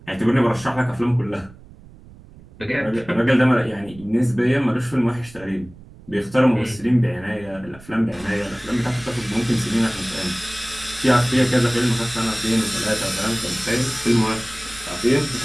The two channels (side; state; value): right; noise; rumble, 21 dB below the sound